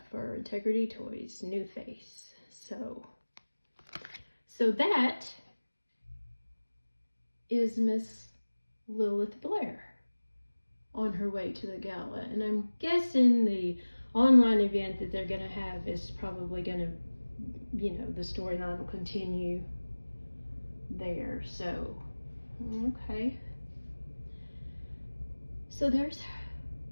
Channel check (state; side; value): inverted; both; correlation -1.00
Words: for Integrity Toys, New Face. So that is Miss Lilith Blair on her way to the gala. And I'm guessing the online event that they're going to have is probably going to, the storyline will continue there. So, okay. So there's